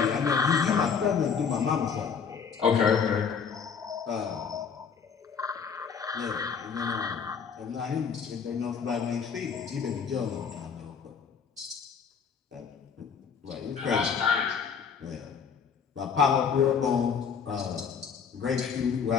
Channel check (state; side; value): quieter; right; 6.5 dB